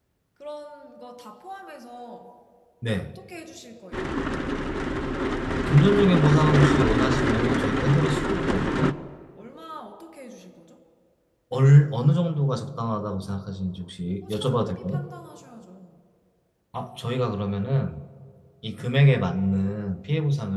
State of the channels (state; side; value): identical; both; correlation 1.00